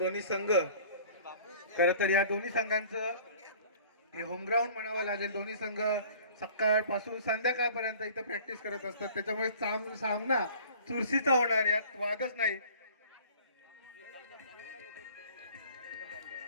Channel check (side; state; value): both; inverted; correlation -0.48